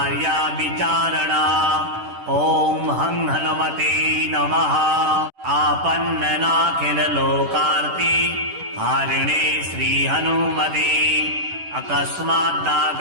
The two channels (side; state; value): left; late; 10 ms